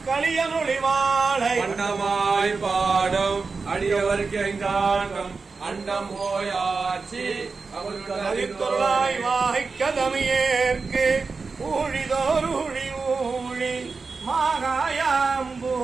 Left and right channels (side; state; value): left; quieter; 4.5 dB